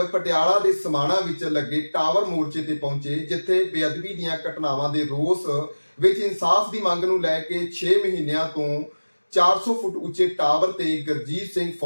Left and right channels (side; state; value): both; inverted; correlation -1.00